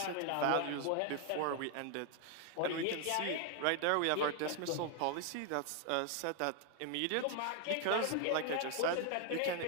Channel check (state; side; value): different; both; correlation 0.00